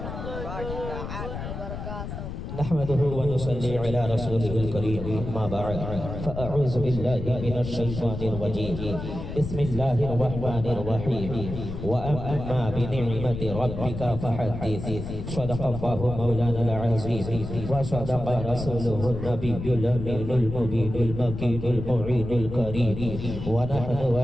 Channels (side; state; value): left; noise; rumble, 7 dB below the sound